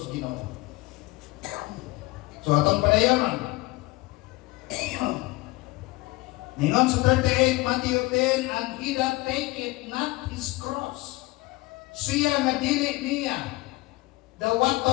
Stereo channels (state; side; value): quieter; right; 21.4 dB